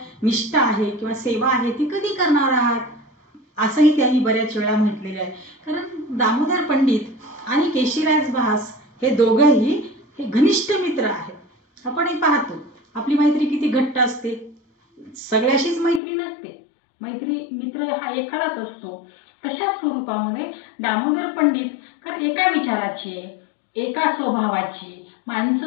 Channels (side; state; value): right; drops out; at 16.0 s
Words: निष्ठा आहे किंवा सेवा आहे ती कधी करणार आहात, असंही त्यांनी बऱ्याच वेळा म्हटलेलं आहे. कारण दामोदर पंडित आणि केशिराज भास हे दोघंही हे घनिष्ठ मित्र आहेत. आपणही पाहतो आपली मैत्री किती घट्ट असते, सगळ्याशीच मैत्री नसते, मित्र हा एखादाच असतो. तशा स्वरूपामध्ये दामोदर पंडित कारण एका विचाराचे, एका स्वभावाची